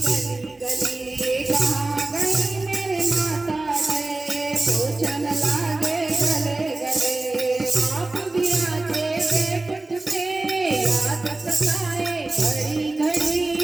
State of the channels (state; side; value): quieter; left; 3.0 dB